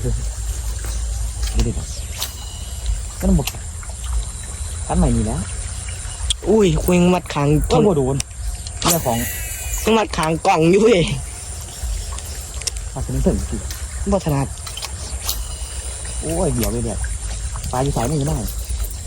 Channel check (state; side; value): identical; both; correlation 1.00